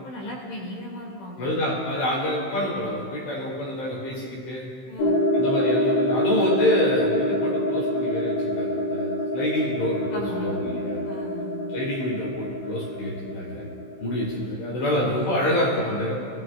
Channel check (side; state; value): right; late; 16 ms